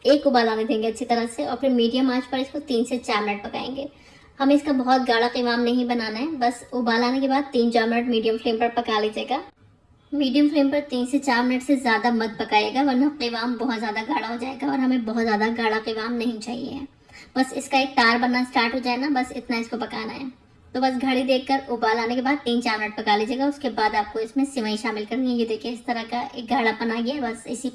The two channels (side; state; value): both; identical; correlation 1.00